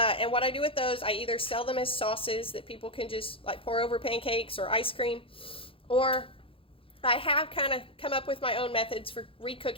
what I do with those, I either sell them as sauces that people can just like pour over pancakes or ice cream, or I have kind of come up with my own methods for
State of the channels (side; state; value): right; late; 0.26 ms